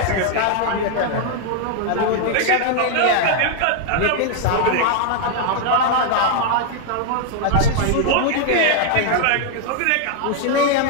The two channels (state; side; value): different; both; correlation 0.00